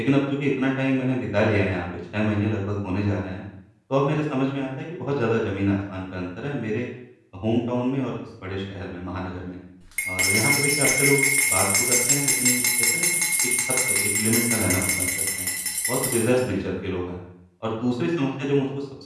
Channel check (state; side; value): identical; both; correlation 1.00